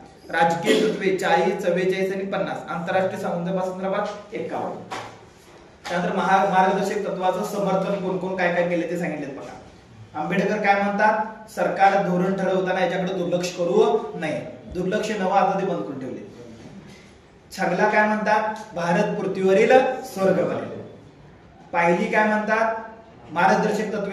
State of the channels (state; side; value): identical; both; correlation 1.00